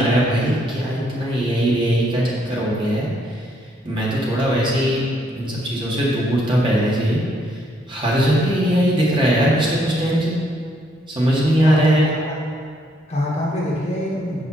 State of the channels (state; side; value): normal; both; correlation 0.71